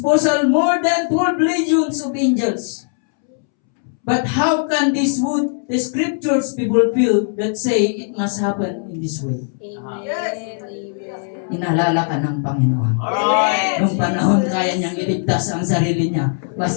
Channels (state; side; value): silent; right; 67 dB below the other